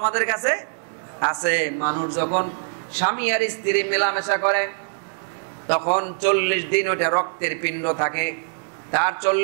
কাছে আছে। মানুষ যখন স্বামী আর স্ত্রী মেলামেশা করে তখন 40 দিন ওটা রক্তের পিণ্ড থাকে, তার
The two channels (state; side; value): silent; left; digital silence